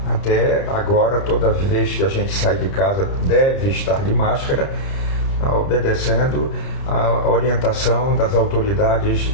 Até agora, toda vez que a gente sai de casa, deve estar de máscara, obedecendo a orientação das autoridades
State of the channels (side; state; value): right; late; 30 ms